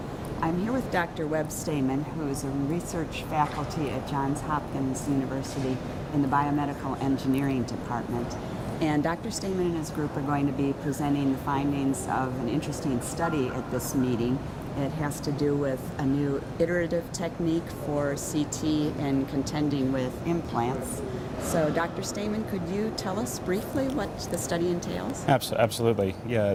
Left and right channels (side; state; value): both; identical; correlation 1.00